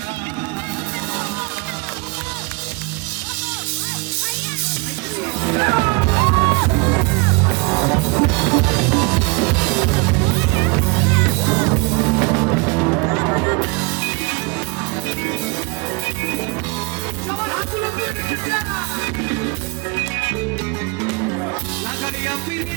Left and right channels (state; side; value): quieter; left; 28.5 dB